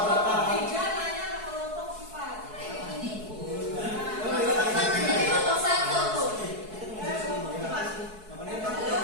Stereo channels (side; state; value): left; late; 4.6 ms